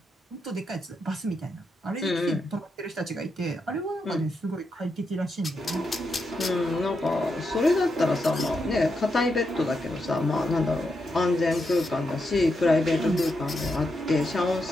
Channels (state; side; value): normal; both; correlation 0.84